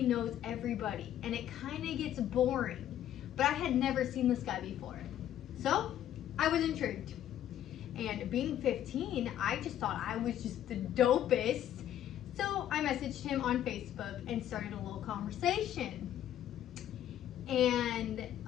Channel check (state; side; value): quieter; right; 11.4 dB